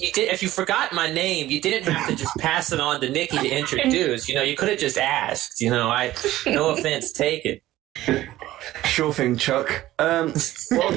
did. If you forgot my name, you didn't have to just pass it on to Nicky to introduce. You could have just asked. No offense taken. Sure thing, Chuck. Well,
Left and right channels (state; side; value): quieter; left; 15.3 dB